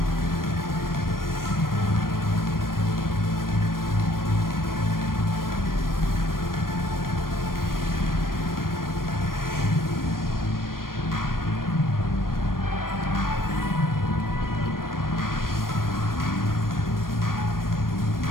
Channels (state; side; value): late; right; 0.91 ms